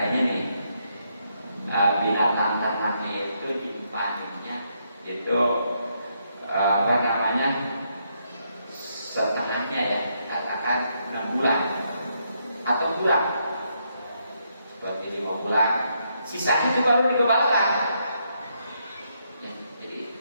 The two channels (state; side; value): inverted; both; correlation -0.77